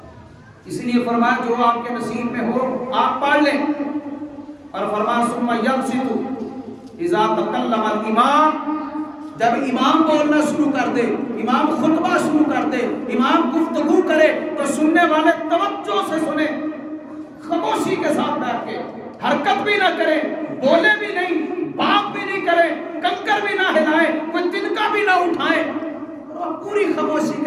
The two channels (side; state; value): both; identical; correlation 1.00